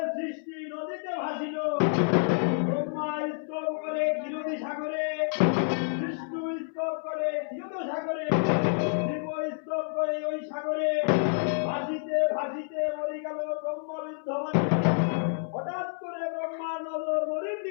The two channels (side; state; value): right; silent; 59 dB below the other